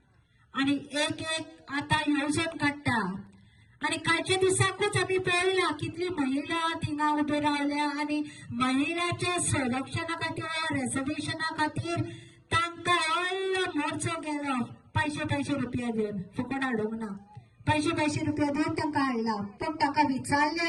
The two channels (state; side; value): identical; both; correlation 1.00